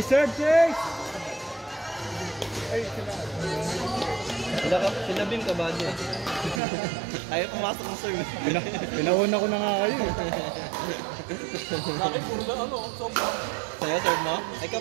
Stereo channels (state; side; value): drops out; left; at 6.6 s